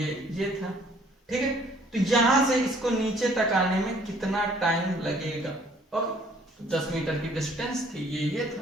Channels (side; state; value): both; normal; correlation 0.59